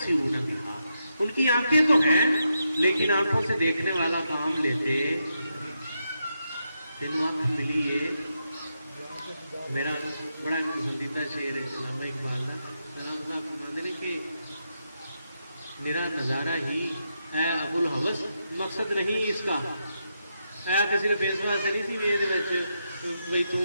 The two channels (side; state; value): both; inverted; correlation -0.84